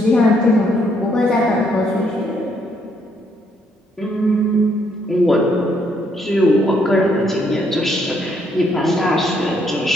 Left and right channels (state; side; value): normal; both; correlation 0.72